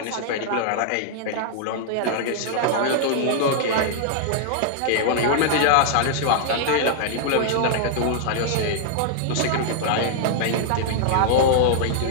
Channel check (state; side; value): different; both; correlation -0.01